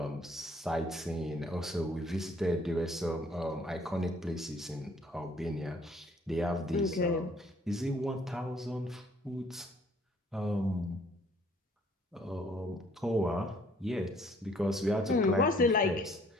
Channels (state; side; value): normal; both; correlation 0.60